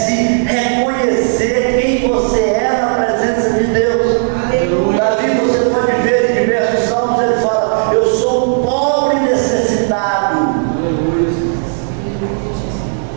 reconhecer quem você é na presença de Deus. Davi, você pode ver em diversos salmos, ele fala, eu sou um pobre necessitado.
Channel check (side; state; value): left; silent; digital silence